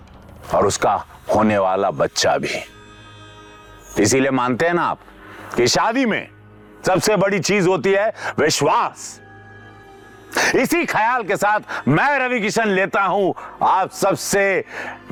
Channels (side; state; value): both; identical; correlation 1.00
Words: और उसका होने वाला बच्चा भी। इसीलिए मानते हैं ना आप कि शादी में सबसे बड़ी चीज होती है विश्वास। इसी ख्याल के साथ मैं रवि किशन लेता हूं आप सबसे